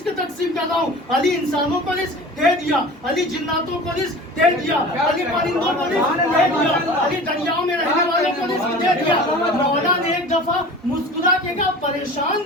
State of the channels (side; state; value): both; normal; correlation 0.38